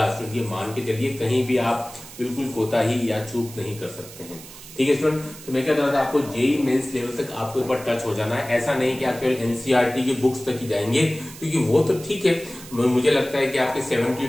स्टूडेंट। ये मान के चलिए, कहीं भी आप बिल्कुल कोताही या चूक नहीं कर सकते हैं, ठीक है स्टूडेंट। तो मैं क्या कह रहा था, आपको जेईई मेंस लेवल तक आपको एक बार टच हो जाना है। ऐसा नहीं कि आप केवल एनसीईआरटी की बुक्स तक ही जाएंगे, क्योंकि वो तो ठीक है, मुझे लगता है कि आपके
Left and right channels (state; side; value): noise; right; hiss, 16 dB below the sound